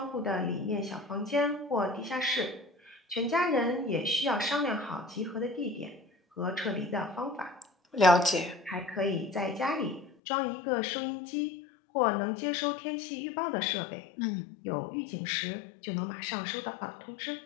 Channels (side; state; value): right; drops out; at 10.2 s